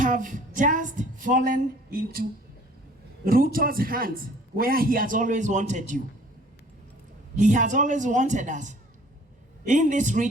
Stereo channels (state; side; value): normal; both; correlation 0.53